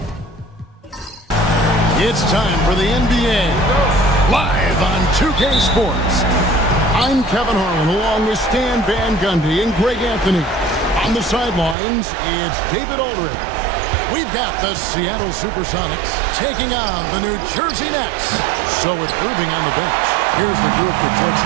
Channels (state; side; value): drops out; left; at 11.8 s